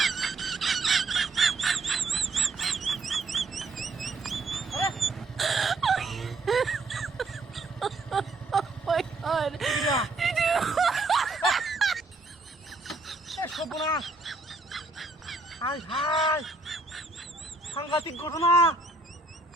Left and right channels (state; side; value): quieter; left; 3.3 dB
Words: হাই সাংঘাতিক ঘটনা